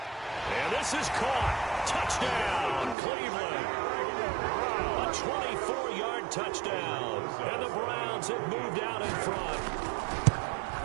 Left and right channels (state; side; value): drops out; left; at 3.0 s